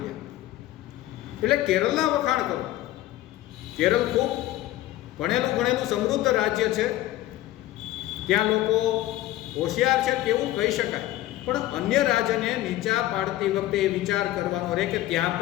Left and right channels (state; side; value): quieter; right; 15.3 dB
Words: એટલે કેરળના વખાણ કરો. કેરળ ખૂબ ભણેલું ગણેલું સમૃદ્ધ રાજ્ય છે, ત્યાં લોકો હોશિયાર છે તેવું કહી શકાય, પણ અન્ય રાજ્યને નીચા પાડતી વખતે એ વિચાર કરવાનો રહે કે ત્યાં